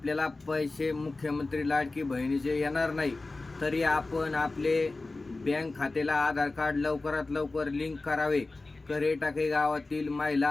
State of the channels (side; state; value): right; quieter; 3.3 dB